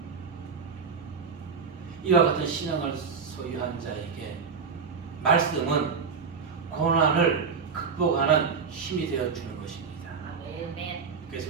이와 같은 신앙을 소유한 자에게 말씀은 고난을 극복하는 힘이 되어주는 것입니다. 아멘.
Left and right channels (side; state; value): left; quieter; 5.7 dB